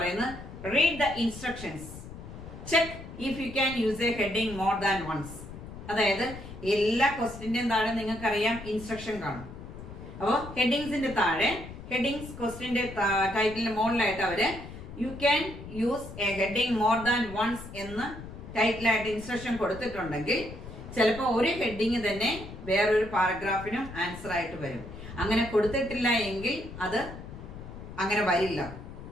read the instructions, check if you can use a heading more than once. അതായത് എല്ലാ ക്വസ്റ്റ്യന്റെയും താഴെ നിങ്ങൾക്കറിയാം ഇൻസ്ട്രക്ഷൻ കാണും. അപ്പോൾ ഹെഡിങ്സിന്റെ താഴെ ഹെഡിങ്സ് ക്വസ്റ്റ്യന്റെ ടൈറ്റിലിന് മുകളിലായിട്ട് അവര് you can use a heading more than once എന്ന് ടൈറ്റിലായിട്ട് ഇൻസ്ട്രക്ഷൻ കൊടുത്തിട്ടുണ്ടെങ്കിൽ ചിലപ്പോൾ ഒരു ഹെഡിങ് തന്നെ വേറൊരു പാരഗ്രാഫിനും ആൻസർ ആയിട്ട് വരും. അങ്ങനെ കൊടുത്തിട്ടില്ല എങ്കിൽ അത് അങ്ങനെ വരില്ല.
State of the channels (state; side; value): noise; left; rumble, 13 dB below the sound